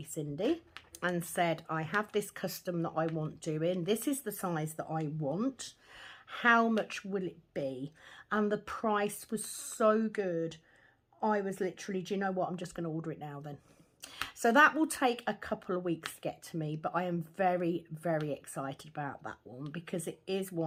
Cindy and said, I have this custom that I want doing. This is the size that I want. How much will it be? And the price was so good. I was literally, do you know what? I'm just going to order it now then. So that will take a couple of weeks to get to me, but I am very, very excited about that one, because it is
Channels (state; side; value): identical; both; correlation 1.00